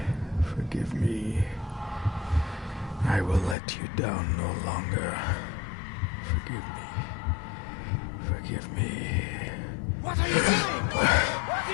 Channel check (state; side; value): drops out; right; at 3.6 s